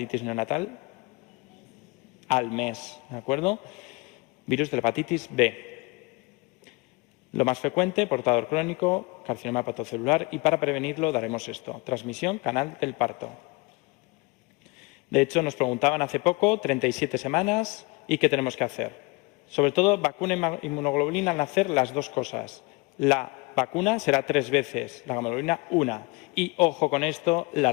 neonatal? Al mes, ¿de acuerdo? Virus de la hepatitis B. Lo más frecuente, portador crónico, carcinoma hepatocelular, y para prevenirlo daremos esto. Transmisión, canal del parto. De hecho, nos preguntaban hace poco, 37 semanas, ¿y qué tenemos que hacer? Sobre todo, vacuna y inmunoglobulina al nacer, las 2 cosas. La vacuna será 3 veces, la gamaglobulina 1. Y, ojo con esto, la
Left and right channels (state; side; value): quieter; right; 26.2 dB